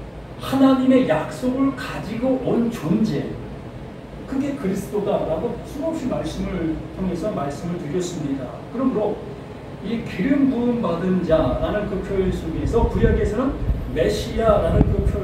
하나님의 약속을 가지고 온 존재, 그게 그리스도다라고 수없이 말씀을 통해서 말씀을 드렸습니다. 그러므로 이 기름 부음 받은 자라는 그 표현 속에서 구약에서는 메시아라는 그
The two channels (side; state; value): both; identical; correlation 1.00